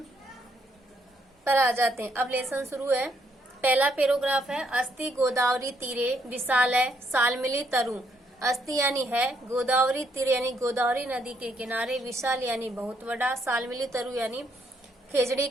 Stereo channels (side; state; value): both; normal; correlation 0.73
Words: पर आ जाते हैं। अब लेसन शुरू है। पहला पैराग्राफ है। अस्ति गोदावरी तीरे विशाल है सालमिली तरु। अस्ति यानी है, गोदावरी तीर यानी गोदावरी नदी के किनारे, विशाल यानी बहुत बड़ा, सालमिली तरु यानी खेजड़ी